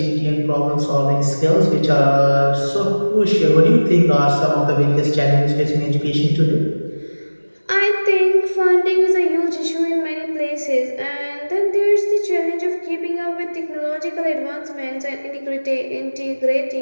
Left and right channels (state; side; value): inverted; both; correlation -1.00